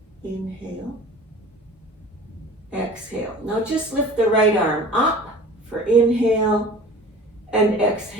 Inhale. Exhale. Now just lift the right arm up for inhale and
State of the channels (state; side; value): normal; both; correlation 0.42